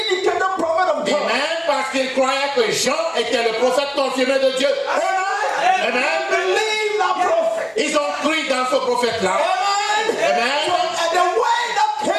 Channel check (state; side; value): identical; both; correlation 1.00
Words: prophet of Et God. même parce qu'ils croyaient que Jean était le prophète confirmé de Dieu. Amen. Amen. They believed that prophet. Ils ont cru dans ce prophète-là. Amen. Amen. And the word that